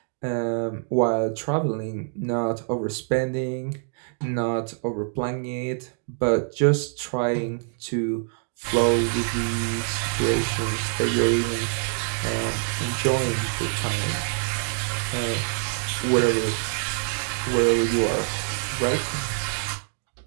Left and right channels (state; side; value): silent; left; 58 dB below the other